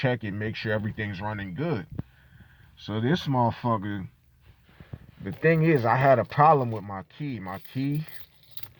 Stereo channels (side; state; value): both; identical; correlation 1.00